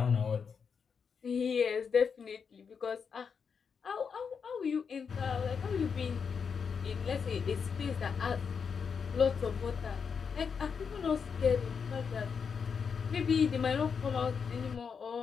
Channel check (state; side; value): quieter; right; 6.2 dB